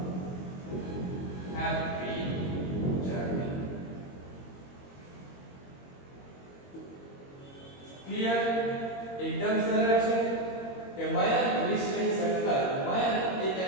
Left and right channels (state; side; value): late; right; 22 ms